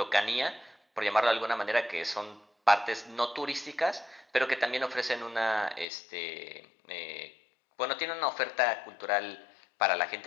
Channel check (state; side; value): drops out; right; at 5.9 s